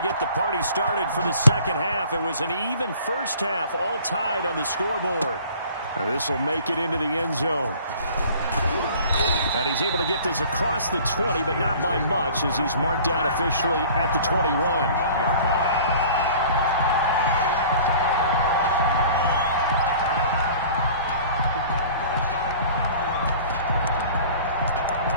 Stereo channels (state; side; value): inverted; both; correlation -0.47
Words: the party started for the second half. It was an even first half, all tied on the scoreboard. This will make it into the end zone. And he's able to get this across the 20, but not by much, as he's marked down officially at the 21.